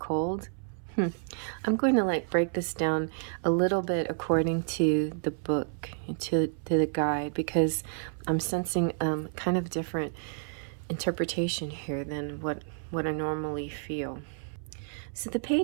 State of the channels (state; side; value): silent; left; 58 dB below the other